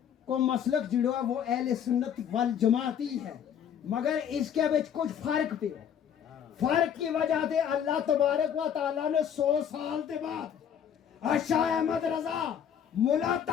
को मसलक जुड़ा वो अहले सुन्नत वल जमात ही है, मगर इसके बीच कुछ फर्क पे हो। फर्क की वजह से अल्लाह तबारक व तआला ने 100 साल के बाद शाह अहमद रजा मुला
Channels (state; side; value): quieter; right; 8.7 dB